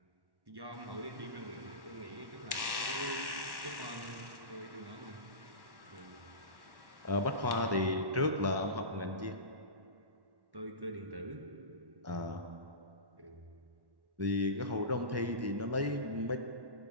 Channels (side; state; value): left; late; 1.1 ms